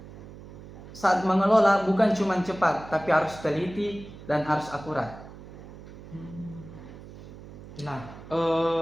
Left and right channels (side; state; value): right; noise; hum, 16 dB below the sound